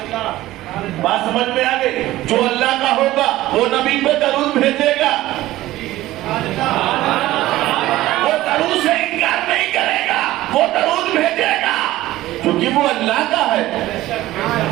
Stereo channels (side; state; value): left; quieter; 16.1 dB